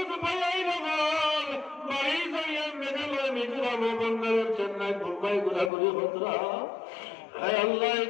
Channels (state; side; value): drops out; right; at 5.7 s